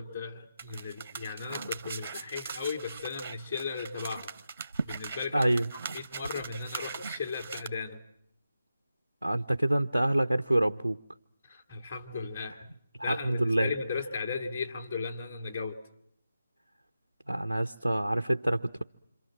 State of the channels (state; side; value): inverted; both; correlation -0.90